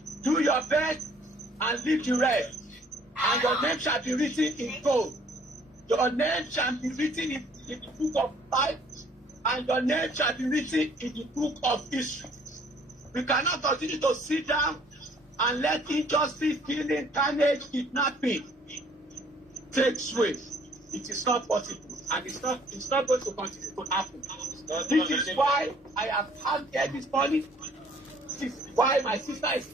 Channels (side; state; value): both; normal; correlation 0.59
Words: Do your best and leave the rest. And your name shall be written in gold. Your name shall be written in the book of life. And your name shall be written in the book of history. We cannot continue to sit down and let injustice, killing, carnage, kidnapping take sway. It is not possible. And it's not going to continue to happen. This is why I am out there this morning. This is why my sister is